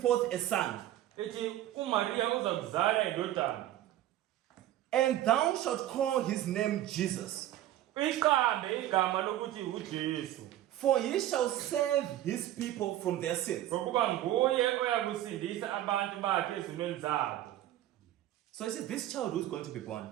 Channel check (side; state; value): left; quieter; 13.3 dB